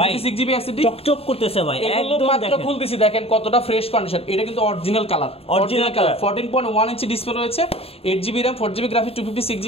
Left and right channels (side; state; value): right; late; 0.28 ms